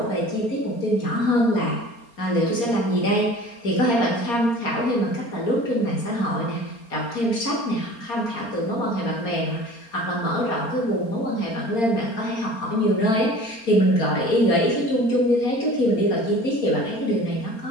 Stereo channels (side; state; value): right; late; 4.3 ms